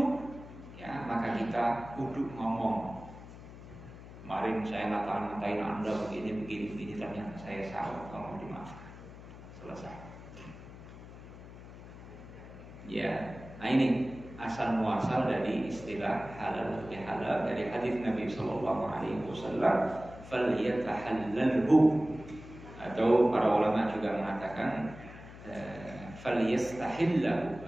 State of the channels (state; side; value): noise; left; hum, 15 dB below the sound